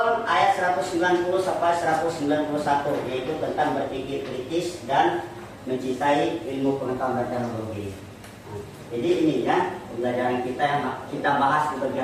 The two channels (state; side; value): identical; both; correlation 1.00